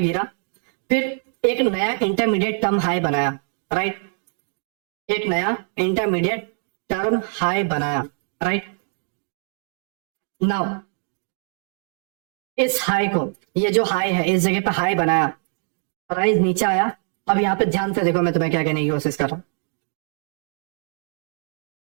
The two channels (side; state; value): left; silent; 56 dB below the other